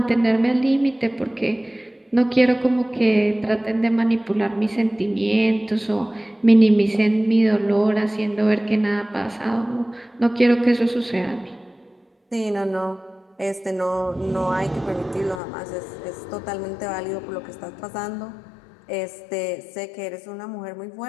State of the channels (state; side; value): drops out; right; at 15.4 s